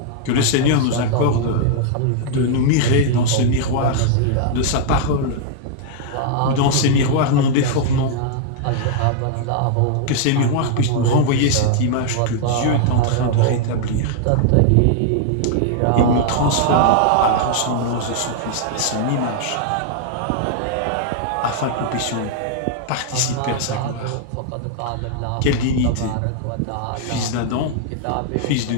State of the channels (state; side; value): different; both; correlation -0.01